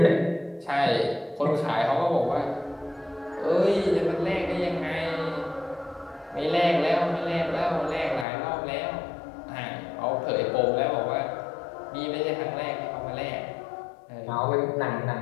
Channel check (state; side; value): drops out; right; at 8.2 s